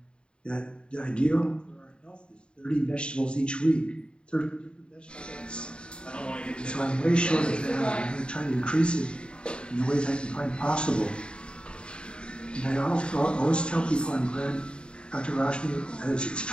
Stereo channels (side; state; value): right; late; 0.053 ms